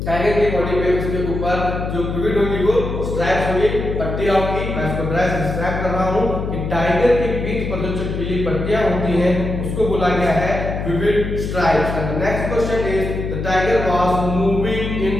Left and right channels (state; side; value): noise; left; hum, 4 dB below the sound